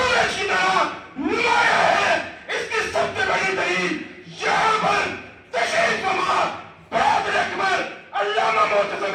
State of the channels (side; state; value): both; identical; correlation 1.00